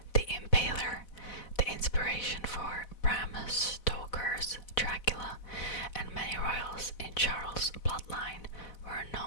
the Impaler, the inspiration for Bram Stoker's Dracula, and many royals in Charles' bloodline were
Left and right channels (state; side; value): late; right; 4.0 ms